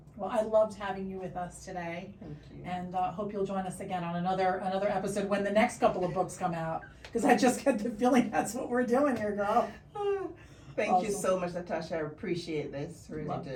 Well, I loved having you with us today, Thank you. and hope you'll join us again on another episode when the next couple of books come out. Because I just get the feeling that's what we're doing here, girl. Thank you Awesome. so much, Natasha. I appreciate this. Really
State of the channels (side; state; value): both; identical; correlation 1.00